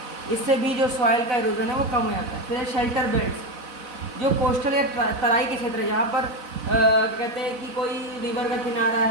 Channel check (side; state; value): left; late; 4.0 ms